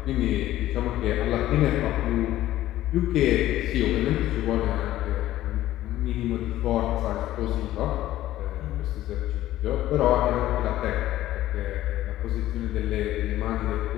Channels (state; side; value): quieter; right; 14.4 dB